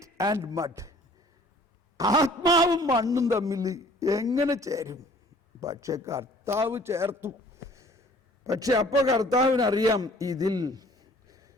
and mud, ആത്മാവും മണ്ണും തമ്മിൽ എങ്ങനെ ചേരും? പക്ഷെ കർത്താവ് ചേർത്തു. പക്ഷെ അപ്പോൾ കർത്താവിനറിയാം ഇതിൽ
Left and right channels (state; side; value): normal; both; correlation 0.53